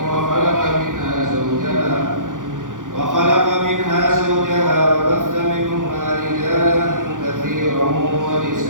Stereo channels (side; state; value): left; late; 0.88 ms